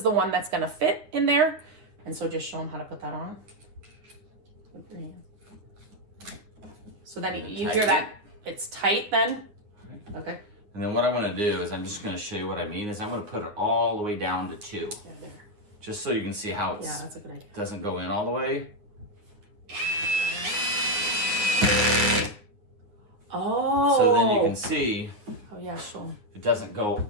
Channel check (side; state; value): left; late; 9.6 ms